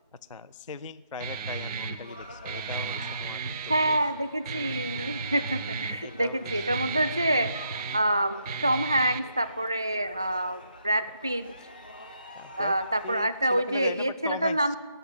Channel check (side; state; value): both; inverted; correlation -0.76